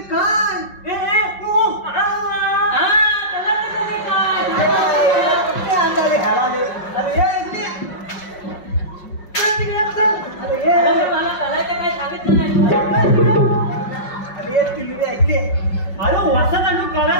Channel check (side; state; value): right; late; 5.5 ms